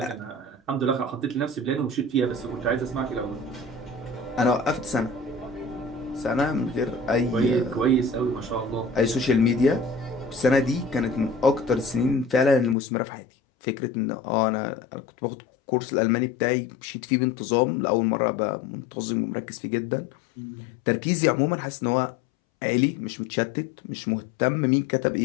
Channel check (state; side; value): drops out; right; at 12.8 s